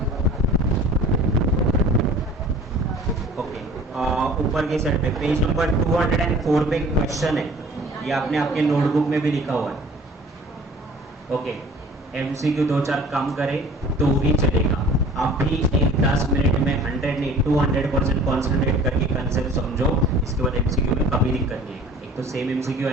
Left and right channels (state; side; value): normal; both; correlation 0.47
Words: ऊपर के साइड पे पेज नंबर 204 पे क्वेश्चन है, ये आपने आपके नोटबुक में भी लिखा हुआ है। ओके, एमसीक्यू 2-4 कम करे तो भी चलेगा। आप भी एक 10 मिनट में 100 नहीं 200% कॉन्सेंट्रेट करके कंसेप्ट समझो, इसके बाद एमसीक्यू में कभी दिक्कत नहीं है। एक तो सेम एमसीक्यू